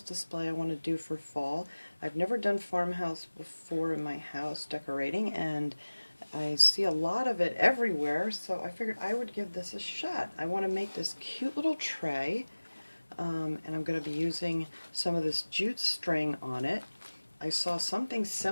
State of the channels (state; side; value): inverted; both; correlation -1.00